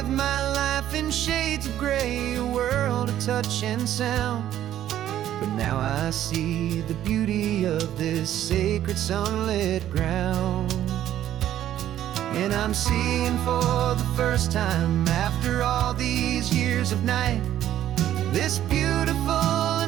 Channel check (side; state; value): left; quieter; 11.9 dB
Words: my life in shades of gray, a world of touch and sound. But now I see the beauty of this sacred sunlit ground. And I'm seeing for the first time, after all these years of night, this beautiful